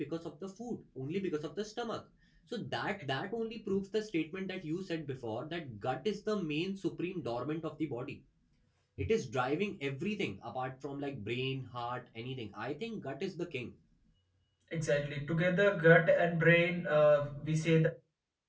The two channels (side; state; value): both; identical; correlation 1.00